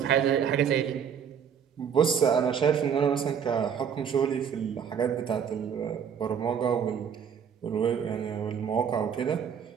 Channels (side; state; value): left; quieter; 7.7 dB